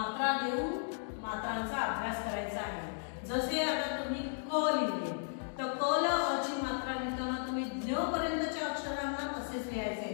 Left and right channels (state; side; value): silent; right; digital silence